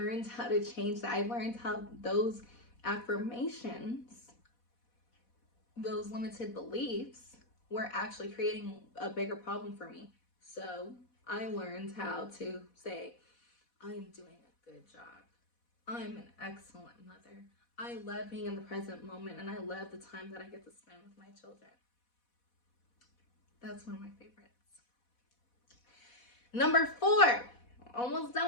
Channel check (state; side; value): late; right; 4.1 ms